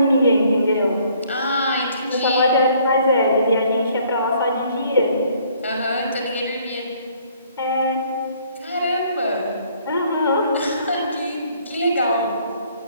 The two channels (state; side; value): inverted; both; correlation -0.62